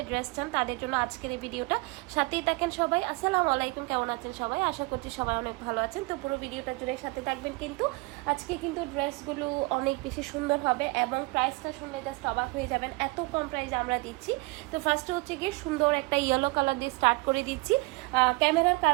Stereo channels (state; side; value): quieter; left; 25.6 dB